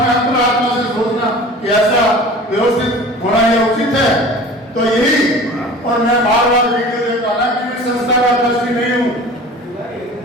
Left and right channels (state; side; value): normal; both; correlation 0.41